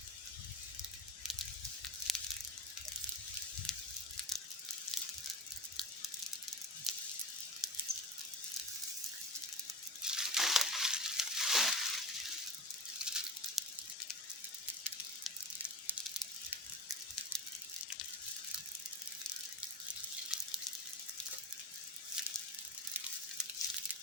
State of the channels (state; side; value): normal; both; correlation 0.27